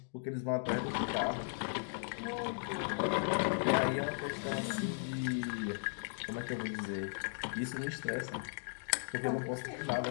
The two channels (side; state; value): right; silent; digital silence